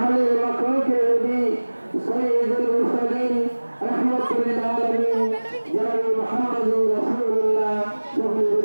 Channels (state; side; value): inverted; both; correlation -1.00